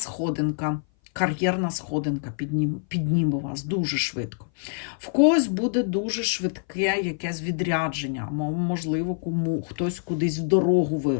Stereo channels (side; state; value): right; silent; 57 dB below the other